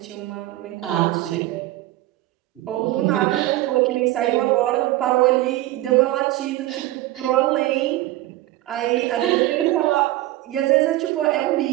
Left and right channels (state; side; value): quieter; left; 16.5 dB